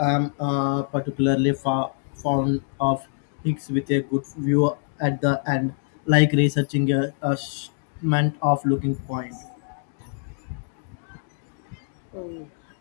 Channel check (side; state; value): right; silent; 56 dB below the other